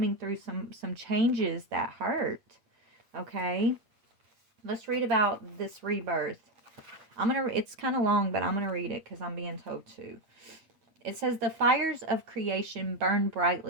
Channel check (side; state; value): left; late; 8.5 ms